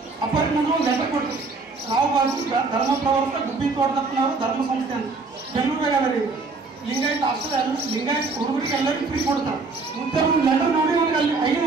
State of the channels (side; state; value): left; quieter; 4.0 dB